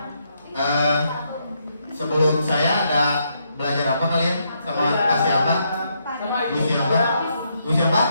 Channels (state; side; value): inverted; both; correlation -0.76